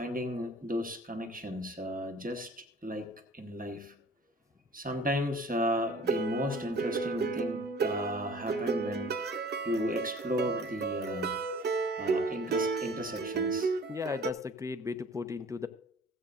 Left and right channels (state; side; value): normal; both; correlation 0.48